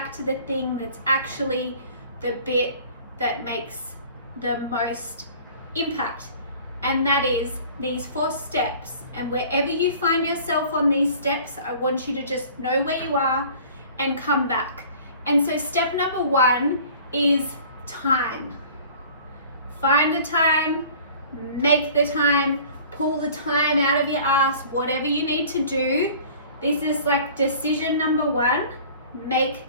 to the thing that's actually the bit that makes the most impact, and that is these 4 steps. And wherever you find yourself on these steps, I want you to just know where you are and come back. And so step number 1 is time. Find the time, make the time, pull the time out of your ass, whatever you need to do. This is like decision number 1, make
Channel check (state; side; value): inverted; both; correlation -0.47